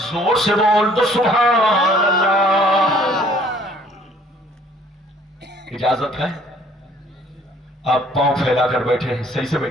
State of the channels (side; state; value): both; normal; correlation 0.58